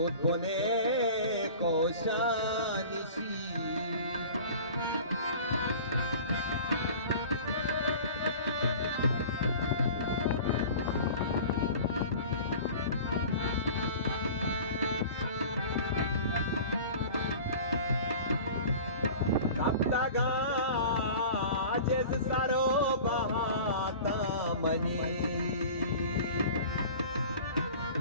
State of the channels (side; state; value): both; inverted; correlation -0.40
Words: बोने कोशानिशी जिस सरो बहाता मनी